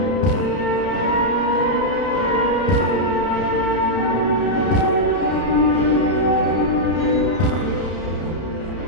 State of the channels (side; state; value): right; late; 31 ms